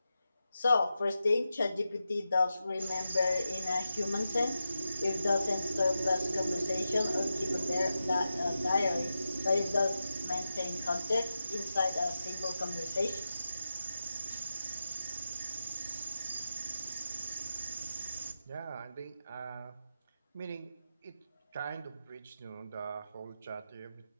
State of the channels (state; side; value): inverted; both; correlation -0.90